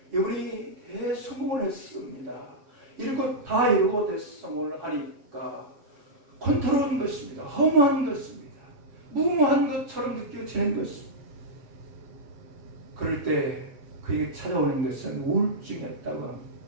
이분이 대성공을 했습니다. 이루고 다 이루고 대성공을 하니까 권태로운 것입니다. 허무한 것입니다. 무모한 것처럼 느껴지는 것입니다. 그럴 때 그에게 찾아오는 것은 우울증이었다고 합니다.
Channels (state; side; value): late; left; 7.6 ms